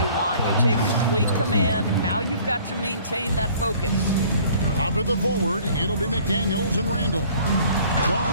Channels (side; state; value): both; inverted; correlation -0.53